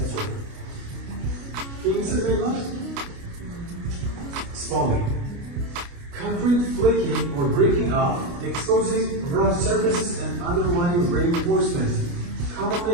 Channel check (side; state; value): left; late; 29 ms